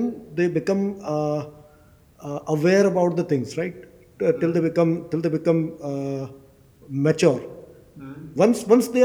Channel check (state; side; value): identical; both; correlation 1.00